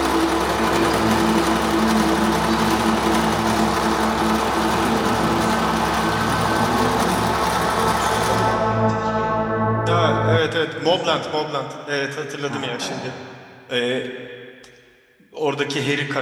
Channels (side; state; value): both; identical; correlation 1.00